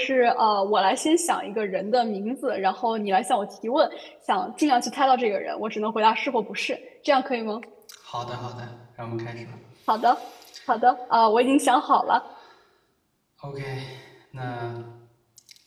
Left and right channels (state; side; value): identical; both; correlation 1.00